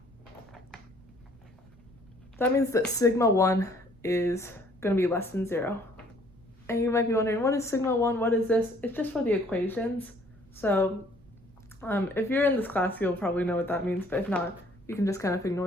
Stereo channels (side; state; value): right; noise; rumble, 26 dB below the sound